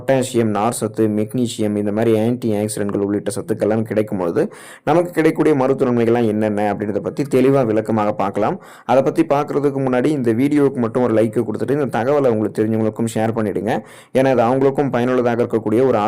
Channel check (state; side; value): identical; both; correlation 1.00